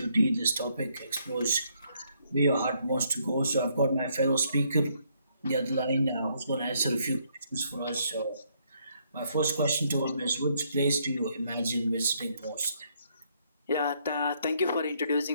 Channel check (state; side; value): inverted; both; correlation -0.71